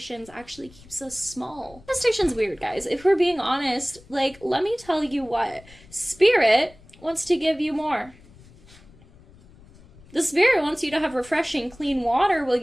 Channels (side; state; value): left; noise; rumble, 24 dB below the sound